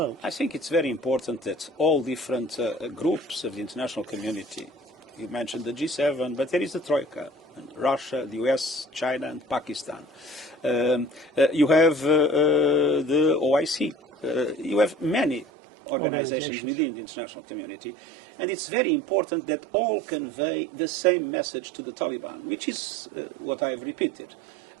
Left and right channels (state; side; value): drops out; left; at 15.5 s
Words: I think it's very important that all different groups of the international community, you mentioned the G7, but there is the Troika, Russia, the US, China, and Pakistan. You have the OIC. You have many organizations within the international community, and it's very important that all convey the same message to the Taliban, which is what I have repeated: